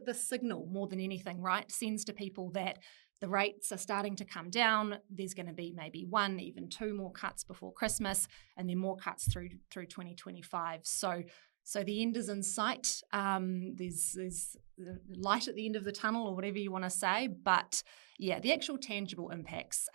signal more than anything, right, sends to people that the rates are starting to come down. There's going to be maybe 1, even 2 more cuts before Christmas, and then more cuts through 2025. So So the end is in sight. There's light at the end of the tunnel, or whatever you want to say. But yeah, the actual tangible impacts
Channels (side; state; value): left; silent; digital silence